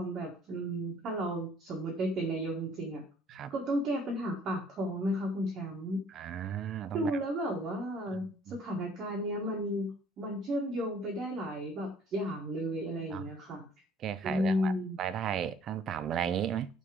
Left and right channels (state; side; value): normal; both; correlation 0.57